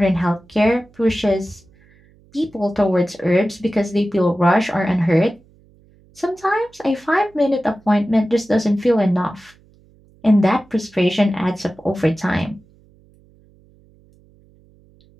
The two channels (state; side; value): noise; right; hum, 30 dB below the sound